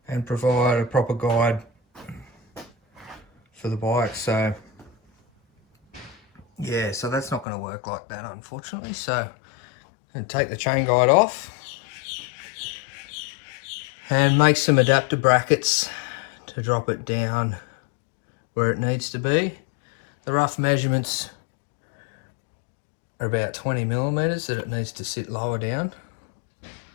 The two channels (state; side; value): drops out; right; at 7.5 s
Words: and provide a proper guide for the bike. So yeah, so that's not going to work like that, unfortunately. So I'm going to take the chain guide off and make some adapter brackets to drop it down where it needs to be. The rough measurements are about 20 millimeters that it needs to sit lower down.